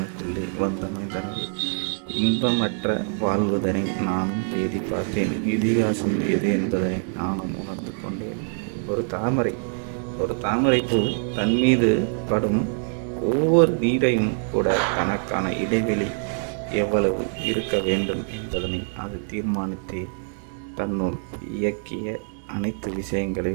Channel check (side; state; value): left; silent; 57 dB below the other